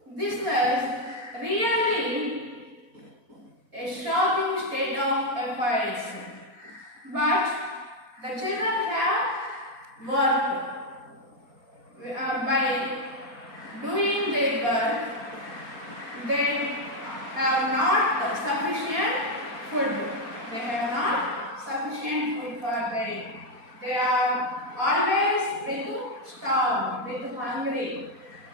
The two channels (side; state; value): left; late; 4.2 ms